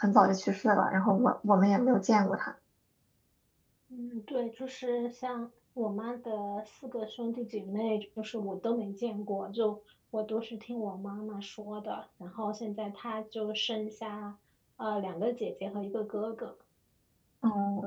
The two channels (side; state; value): both; identical; correlation 1.00